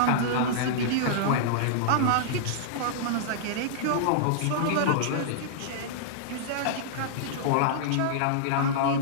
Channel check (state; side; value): different; both; correlation -0.02